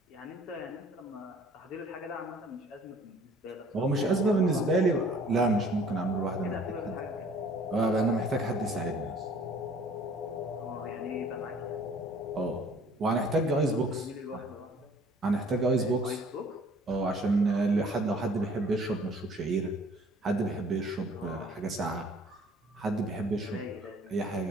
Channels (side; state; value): both; normal; correlation 0.54